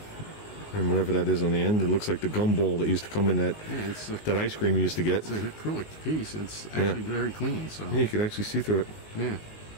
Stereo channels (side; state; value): right; late; 19 ms